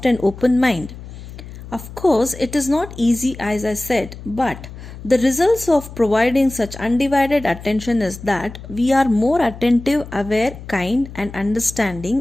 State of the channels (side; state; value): left; noise; hum, 14 dB below the sound